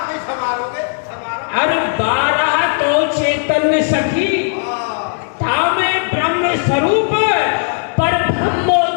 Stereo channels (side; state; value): right; silent; digital silence